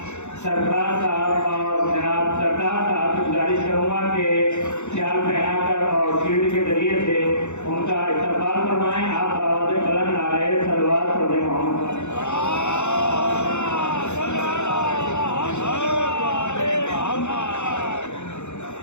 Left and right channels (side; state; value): right; late; 0.83 ms